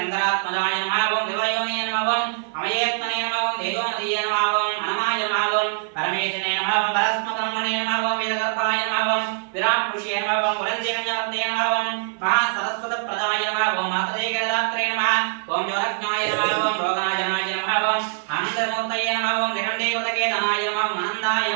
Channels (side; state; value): left; silent; 63 dB below the other